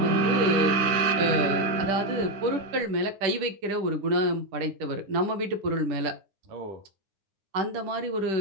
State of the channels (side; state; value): left; late; 10 ms